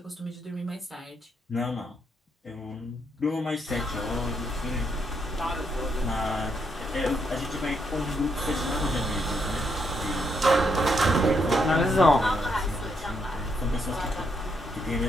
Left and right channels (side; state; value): both; normal; correlation 0.77